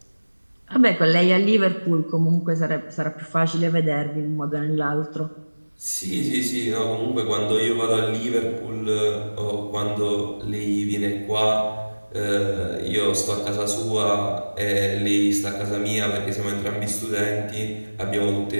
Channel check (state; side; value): inverted; both; correlation -1.00